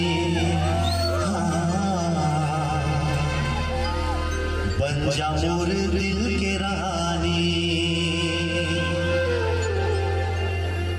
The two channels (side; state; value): both; identical; correlation 1.00